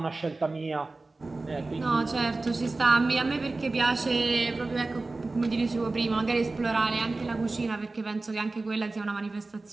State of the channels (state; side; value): quieter; left; 3.3 dB